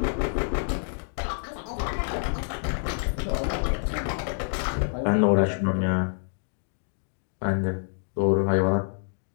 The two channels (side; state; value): right; silent; digital silence